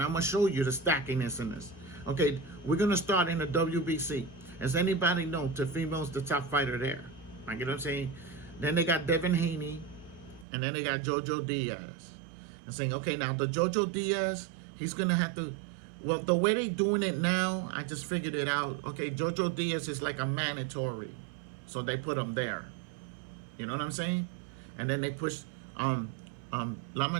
I'm going to show you the stackiness in this. Okay, we're going to start in the WBC. As anybody know, Teofimo's the top fighter there. Like, you know what I'm saying? Then they got Devin Haney. And then they got Jojo Diaz. And saying, okay, now the Jojo Diaz, he's going to have to, well, the way they doing it now, I just figured it out. Okay, Jojo Diaz is like a mandatory. So they put him there. You know what I'm saying? And then they push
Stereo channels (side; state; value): left; drops out; at 10.5 s